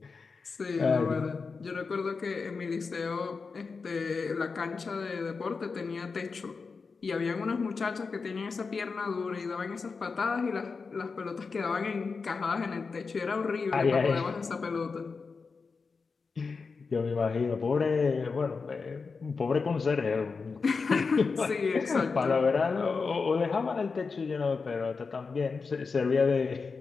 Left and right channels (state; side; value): quieter; right; 4.7 dB